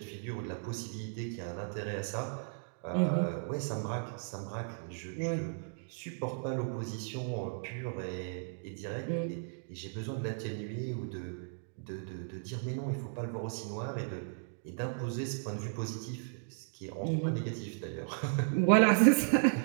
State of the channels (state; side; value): silent; left; digital silence